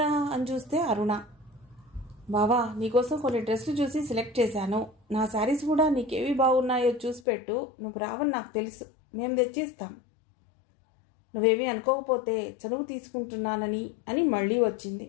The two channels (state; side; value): drops out; right; at 7.2 s